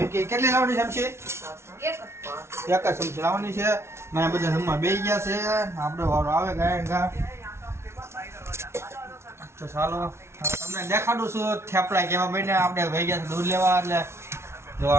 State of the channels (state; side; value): late; left; 0.13 ms